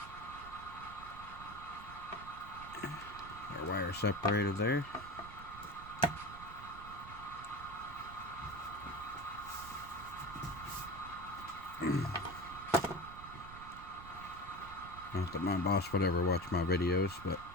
Our wire separated there. Not that my boss would ever watch my videos, but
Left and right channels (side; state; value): right; noise; rumble, 14 dB below the sound